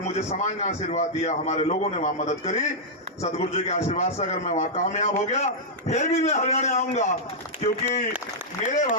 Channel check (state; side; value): normal; both; correlation -0.08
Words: समाज ने आशीर्वाद दिया, हमारे लोगों ने वहां मदद करी, सदगुरु जी के आशीर्वाद से अगर मैं वहां कामयाब हो गया, फिर भी मैं हरियाणा आऊंगा, क्योंकि मेरे